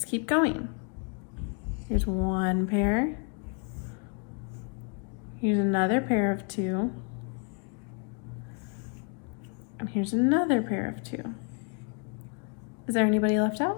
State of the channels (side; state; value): right; quieter; 39.6 dB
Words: keep going. Here's 1 pair. Here's another pair of 2. And here's another pair of 2. Is there anybody left